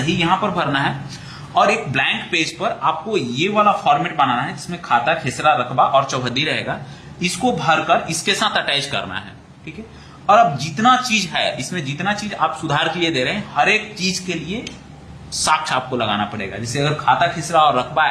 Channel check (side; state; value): both; identical; correlation 1.00